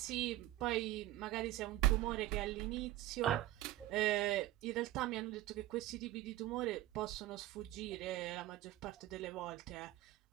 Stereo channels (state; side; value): quieter; left; 15.8 dB